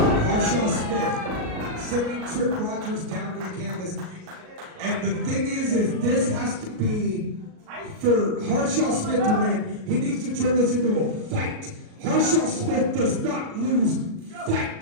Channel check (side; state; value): left; late; 38 ms